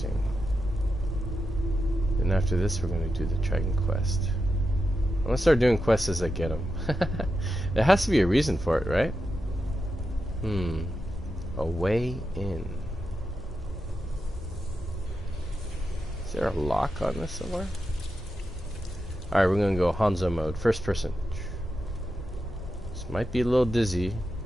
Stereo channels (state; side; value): normal; both; correlation 0.88